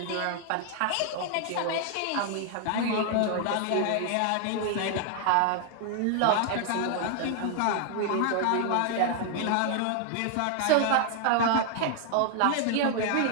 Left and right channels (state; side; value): different; both; correlation 0.00